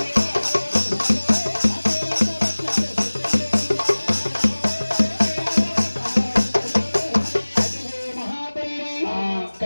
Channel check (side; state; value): both; inverted; correlation -1.00